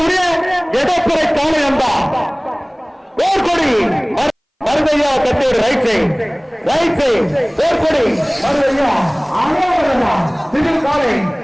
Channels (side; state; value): both; identical; correlation 1.00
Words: எடப்புறை காலை அம்பா போர்க்கொடி மருதையா கட்டேடு ரைட் சைட் போர்க்கொடி மருதையா சிவில் காலை